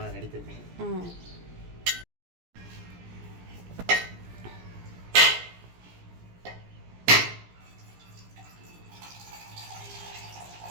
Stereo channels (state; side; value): late; left; 17 ms